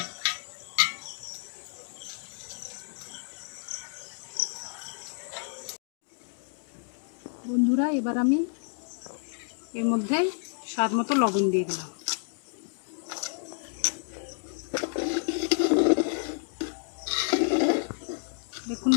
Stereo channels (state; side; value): silent; right; digital silence